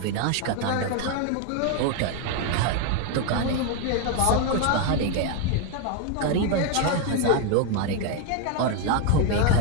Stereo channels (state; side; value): different; both; correlation 0.01